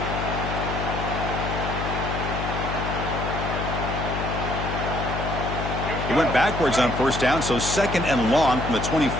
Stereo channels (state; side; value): noise; left; hum, 4 dB below the sound